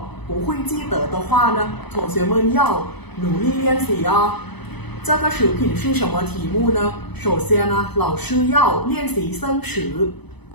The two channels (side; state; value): right; late; 0.99 ms